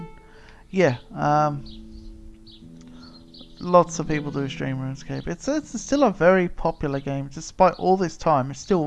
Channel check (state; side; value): identical; both; correlation 1.00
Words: Yeah, lots of people do stream RuneScape. It's still a very popular game, despite all this time. It's